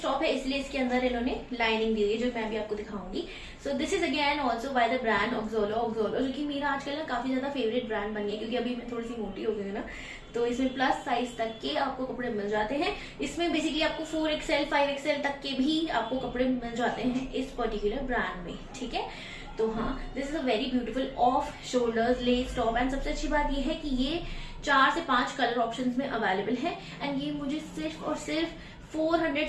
टॉप है इसलिए इसके अंदर इन्होंने लाइनिंग दी है जो मैं भी आपको दिखाऊंगी। So this is again also by the brand Oxolloo, जो कि मेरा आजकल ना काफी ज्यादा फेवरेट ब्रांड बन गया क्योंकि अभी मैं थोड़ी सी मोटी हो गई हूँ ना, तो इसमें प्लस साइज तक के आपको कपड़े मिल जाते हैं। इसमें बेसिकली आपको 4XL 5XL तक के भी आपको कपड़े मिल जाते हैं इस पर्टिकुलर ब्रांड में। ठीक है, तो हाँ this is a very beautiful off shoulders less top and सबसे अच्छी बात ये है कि ये 4 से 5 कलर ऑप्शंस में अवेलेबल है एंड ये मुझे सिर्फ और सिर्फ 400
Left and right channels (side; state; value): both; identical; correlation 1.00